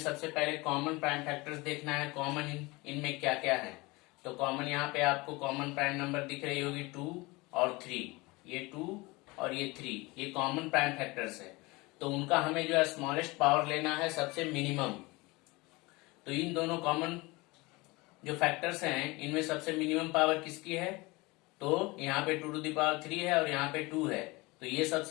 पहले कॉमन प्राइम फैक्टर्स देखना है, कॉमन इनमें क्या क्या है। तो कॉमन यहाँ पे आपको कॉमन प्राइम नंबर दिख रही होगी 2 और 3, ये 2 और ये 3, ये कॉमन प्राइम फैक्टर्स है। तो उनका हमें जो है स्मॉलेस्ट पावर लेना है, सबसे मिनिमम। तो इन दोनों कॉमन जो फैक्टर्स हैं इनमें सबसे मिनिमम पावर किसकी है? तो यहाँ पे 2 टू द पावर 3 है और यहाँ पे 2 है, तो ये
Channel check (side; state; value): right; quieter; 23.6 dB